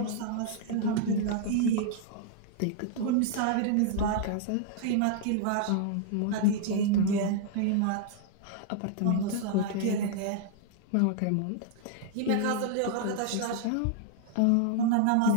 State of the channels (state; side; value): different; both; correlation -0.01